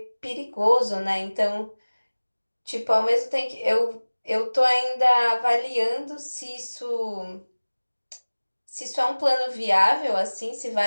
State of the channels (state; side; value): inverted; both; correlation -1.00